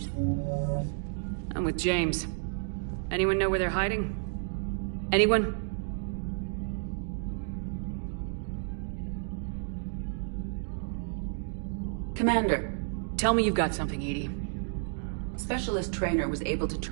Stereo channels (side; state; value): left; silent; digital silence